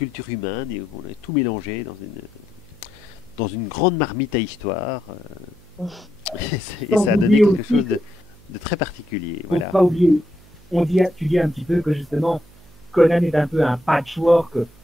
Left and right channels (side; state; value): right; noise; hum, 26 dB below the sound